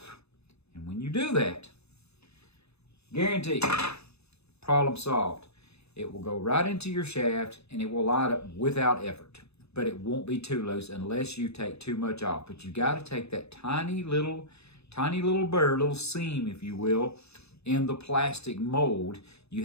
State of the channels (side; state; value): right; late; 0.79 ms